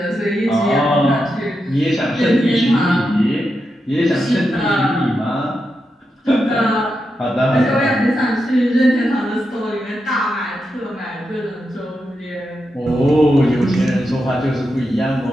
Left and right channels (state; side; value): normal; both; correlation 0.87